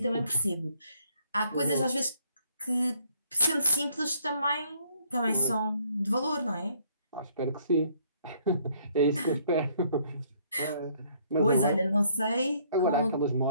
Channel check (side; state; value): both; inverted; correlation -0.65